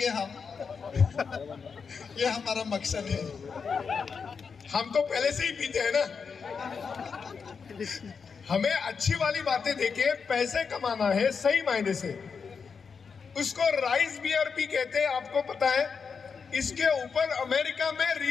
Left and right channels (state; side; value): quieter; right; 5.7 dB